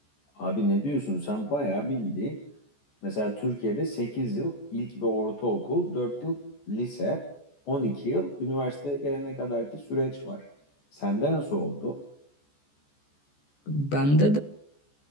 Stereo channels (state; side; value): late; right; 14 ms